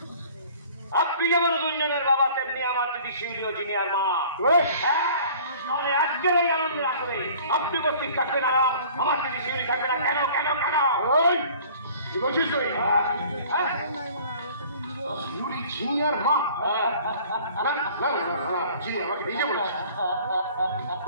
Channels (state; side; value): inverted; both; correlation -0.50